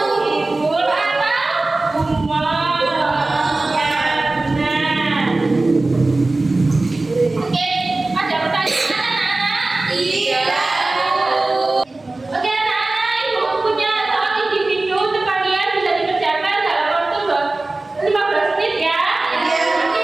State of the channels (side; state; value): left; quieter; 3.1 dB